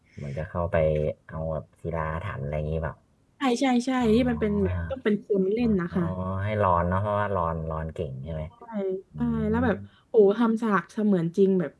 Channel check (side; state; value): both; identical; correlation 1.00